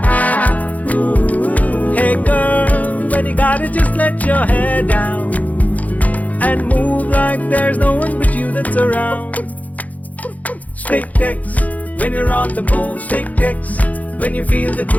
Ooh. Hey girl, when you got it, just let your hair down and move like there's no one but you that's around. Stick Tex. When you're on the move, Stick Tex. When you feel the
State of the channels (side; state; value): right; late; 0.075 ms